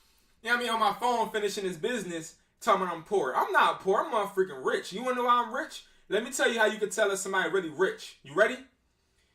you know what I mean, on my phone, finishing this business, telling me I'm poor. I'm not poor. I'm freaking rich. You want to know why I'm rich? Let me tell you how you can tell if somebody really rich. You ready?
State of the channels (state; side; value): identical; both; correlation 1.00